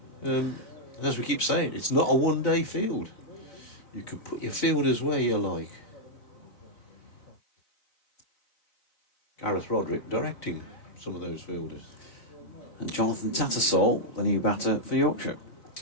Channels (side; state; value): right; late; 4.2 ms